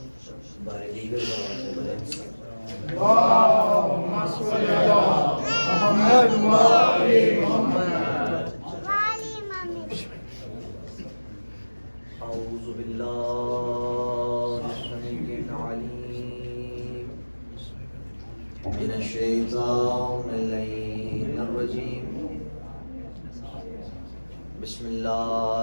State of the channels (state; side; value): inverted; both; correlation -1.00